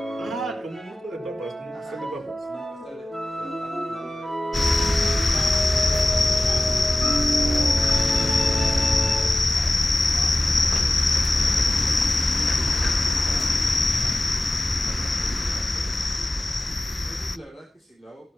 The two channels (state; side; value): normal; both; correlation 0.96